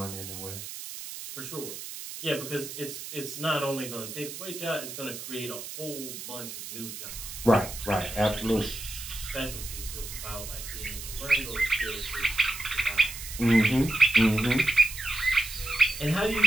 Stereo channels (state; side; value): noise; right; hiss, 10 dB below the sound